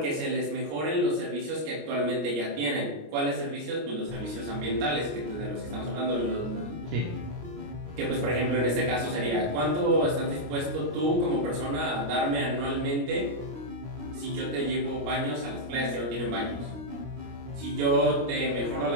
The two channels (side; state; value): left; late; 25 ms